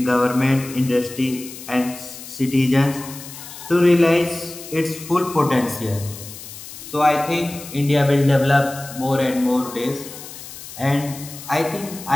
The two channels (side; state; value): left; noise; hiss, 14 dB below the sound